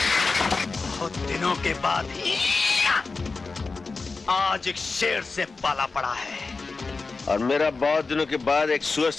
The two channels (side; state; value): right; quieter; 4.1 dB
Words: बहुत दिनों के बाद आज एक शेर से पाला पड़ा है, और मेरा बहुत दिनों के बाद एक सुअर